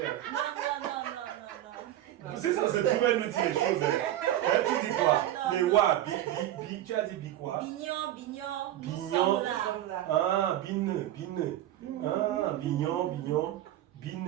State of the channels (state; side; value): quieter; left; 13.0 dB